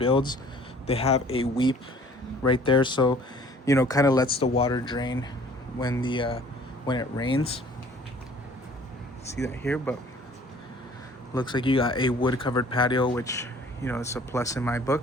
they have a weep right there, so you know, kind of lets the water drain when it rains. See that here? But looks like you got a wood covered patio, which, you know, it's a plus in my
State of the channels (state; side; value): normal; both; correlation 0.52